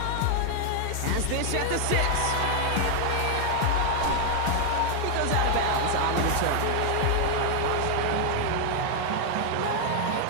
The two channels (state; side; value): different; both; correlation 0.00